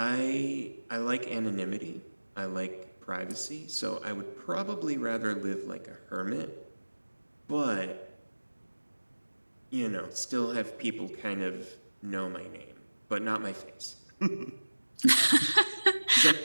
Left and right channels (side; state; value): both; inverted; correlation -1.00